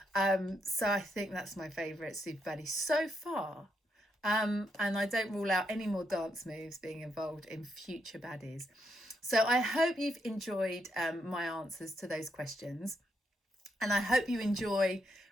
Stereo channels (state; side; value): normal; both; correlation 0.79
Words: So I think that's my favourite super baddie so far. And I don't rule out any more dance moves being involved in future baddies. So I hope you've enjoyed my answers to those questions. And I hope you enjoy